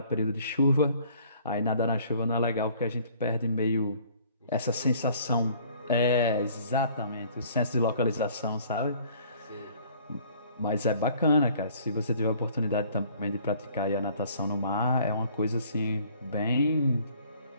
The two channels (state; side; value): inverted; both; correlation -0.57